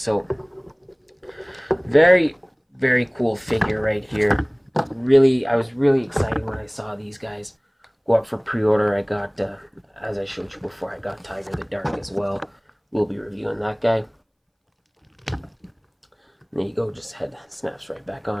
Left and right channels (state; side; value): identical; both; correlation 1.00